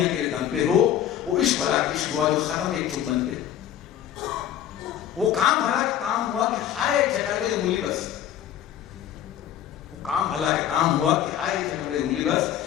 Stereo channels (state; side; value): quieter; right; 10.8 dB